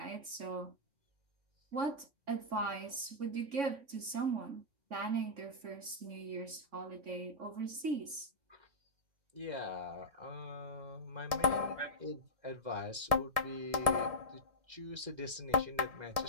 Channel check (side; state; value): left; late; 3.5 ms